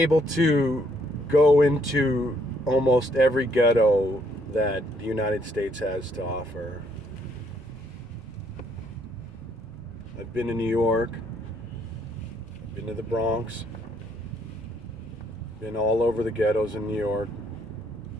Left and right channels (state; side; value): normal; both; correlation 0.69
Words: to go into almost every ghetto that the United States has to offer. I've been to New York, been to the Bronx, been all over the ghettos in New York,